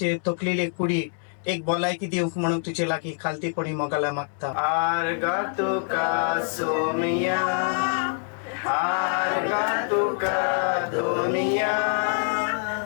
तकलेले कुडी एक भलायकी दिवंक म्हणून तुजे लागीं खालतीपणी मोगाला मागता आर्गा तुका सोमिया आर्गा तुका दुनिया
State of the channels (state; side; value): silent; right; 58 dB below the other